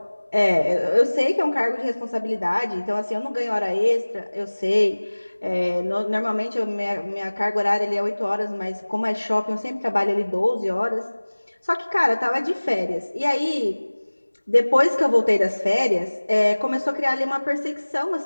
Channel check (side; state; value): both; inverted; correlation -1.00